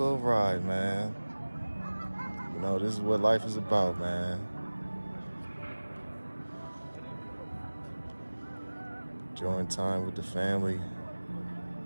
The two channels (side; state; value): both; inverted; correlation -1.00